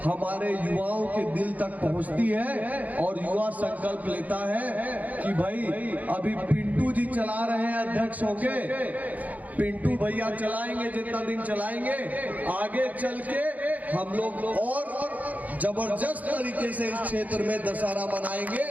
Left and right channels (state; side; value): late; left; 0.077 ms